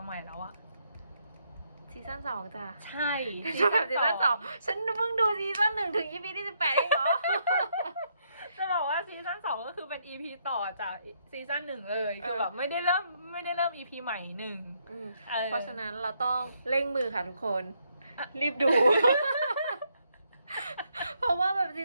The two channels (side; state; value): both; inverted; correlation -0.75